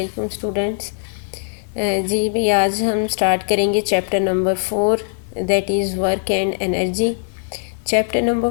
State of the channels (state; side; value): silent; right; digital silence